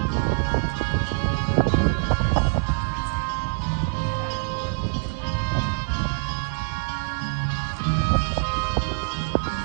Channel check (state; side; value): silent; left; 62 dB below the other